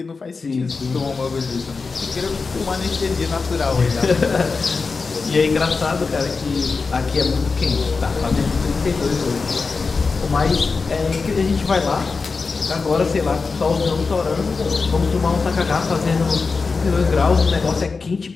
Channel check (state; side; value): quieter; right; 4.5 dB